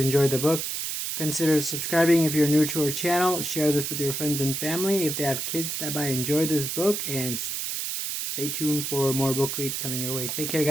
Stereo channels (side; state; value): right; noise; hiss, 3 dB below the sound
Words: the book. Consider subscribing if you're new to our channel. Share this with your friends and family if they have kids that might enjoy this book. And stay tuned for more book reads coming your way. Take care,